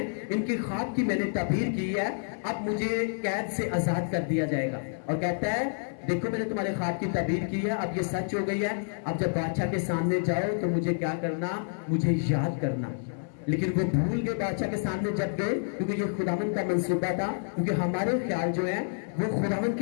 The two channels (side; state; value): right; silent; 57 dB below the other